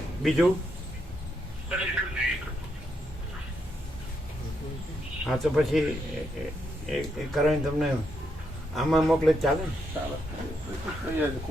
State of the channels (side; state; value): both; normal; correlation 0.79